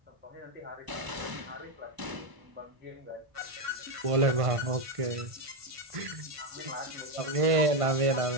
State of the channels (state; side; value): late; left; 1.5 ms